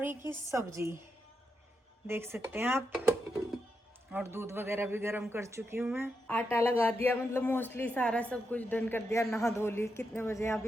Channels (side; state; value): both; normal; correlation 0.84